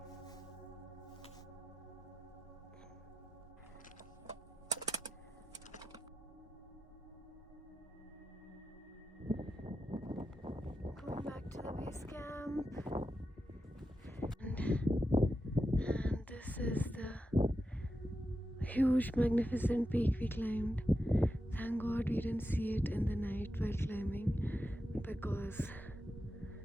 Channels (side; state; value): both; normal; correlation 0.89